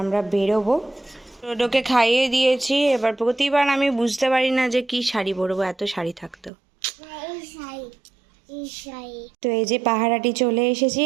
আমরা বেরোবো। ডোডোকে খাইয়ে দিয়েছি। এবার প্রতিবার আমি বুঝতে পারি না যে কি শাড়ি পরবো, এত শাড়ি থাকতো। তো এই যে পাহারাটি চলে এসেছি,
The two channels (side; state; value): left; drops out; at 6.5 s